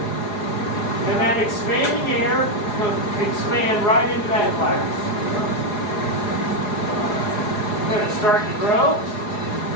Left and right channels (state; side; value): late; right; 4.8 ms